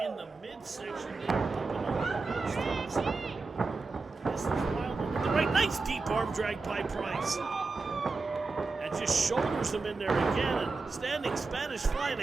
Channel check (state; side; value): quieter; left; 4.0 dB